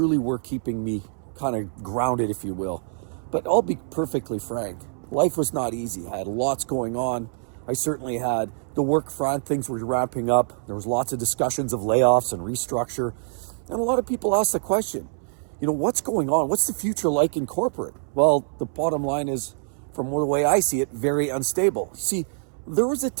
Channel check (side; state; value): left; silent; 62 dB below the other